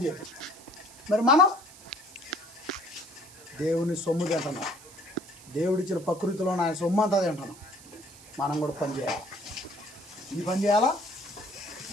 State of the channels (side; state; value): right; noise; hiss, 20 dB below the sound